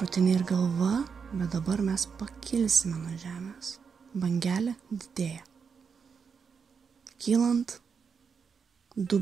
ir galva, bet dabar mes pakilsime nuo žemės. Bangelė didėja. Kylant,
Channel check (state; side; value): quieter; left; 6.0 dB